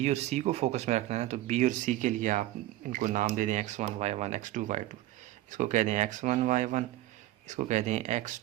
और सी को फोकस में रखना है, तो बी और सी के लिए आप इनको नाम दे दें x1 y1 x2 y2। इसको कह दें x1 y1, इसको कह दें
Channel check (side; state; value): left; quieter; 15.6 dB